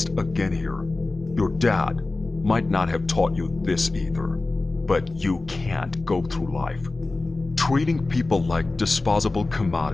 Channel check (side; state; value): right; quieter; 3.3 dB